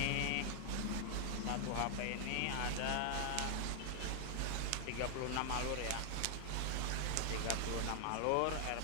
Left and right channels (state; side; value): different; both; correlation 0.00